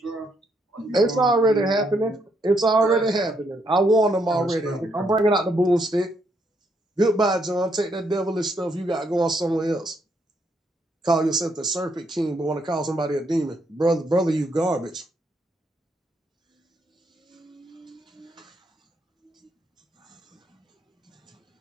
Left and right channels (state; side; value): normal; both; correlation 0.75